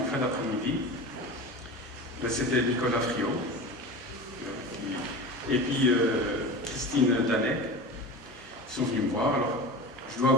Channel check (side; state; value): both; normal; correlation 0.30